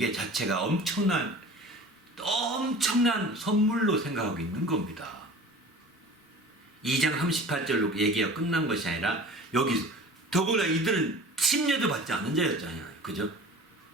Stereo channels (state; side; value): normal; both; correlation 0.41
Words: 자체가 엄청난 선물로 생각하고 있는 겁니다. 2장 38절로 얘기가 끝난 것이 아니라 여기서 더구나 이들은 침례도 받지 않은 자였잖아요. 그죠?